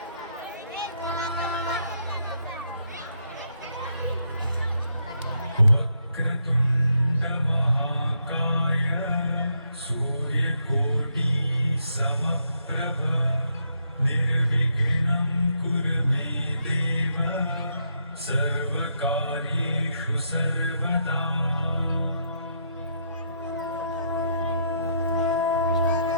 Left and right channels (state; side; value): inverted; both; correlation -0.76